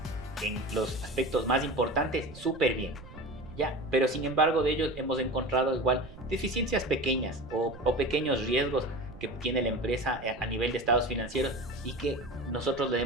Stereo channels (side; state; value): right; noise; rumble, 16 dB below the sound